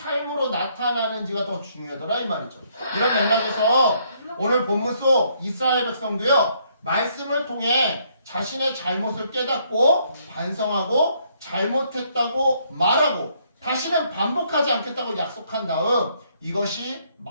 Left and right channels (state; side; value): inverted; both; correlation -0.69